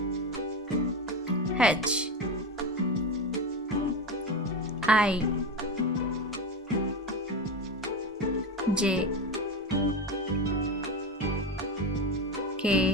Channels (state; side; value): normal; both; correlation 0.19